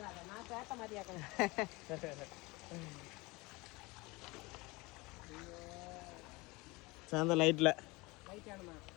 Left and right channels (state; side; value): quieter; right; 23.9 dB